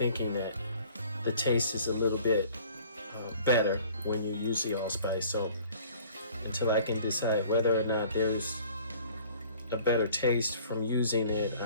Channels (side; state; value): both; inverted; correlation -0.51